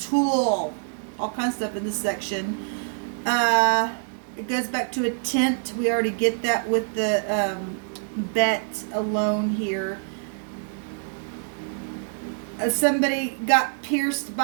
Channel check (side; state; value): left; silent; digital silence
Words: all kinds of stuff in this section. It goes back to a tent. We already get that with the bet alone here. Somebody got pierced